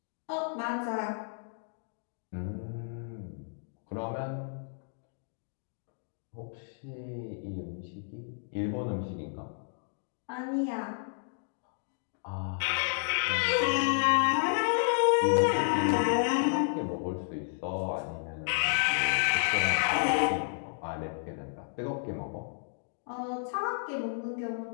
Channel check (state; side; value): silent; right; digital silence